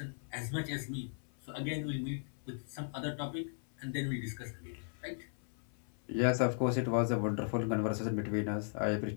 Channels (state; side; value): silent; right; 53 dB below the other